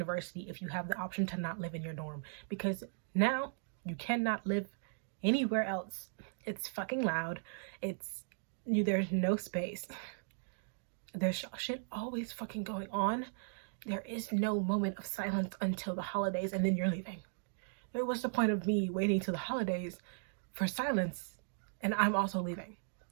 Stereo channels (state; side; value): silent; left; digital silence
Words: if you have the option to not live in your dorm, because now you cannot live anywhere else. It's fucking loud. There's no space. There's shit always fucking going on. There is no moment of silence until the holidays, and then you're leaving. What's the point of me waiting till the holidays for silence and I'm also leaving?